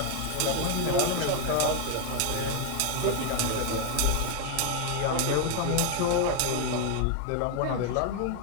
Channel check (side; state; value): both; different; correlation 0.01